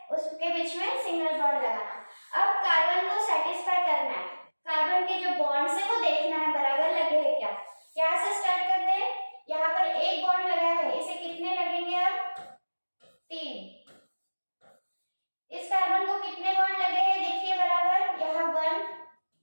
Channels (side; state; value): both; inverted; correlation -1.00